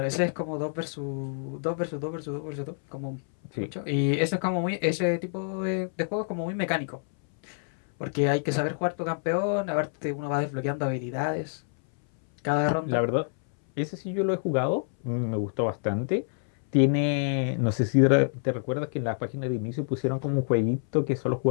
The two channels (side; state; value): right; silent; 60 dB below the other